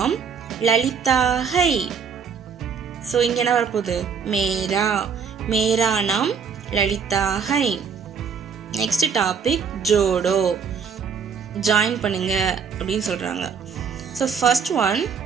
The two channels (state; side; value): quieter; left; 6.3 dB